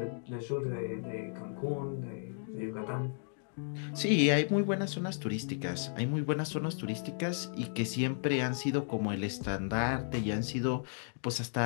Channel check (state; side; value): silent; right; digital silence